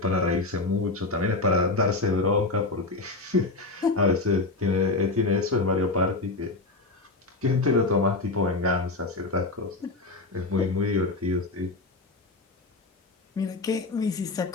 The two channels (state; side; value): quieter; right; 3.3 dB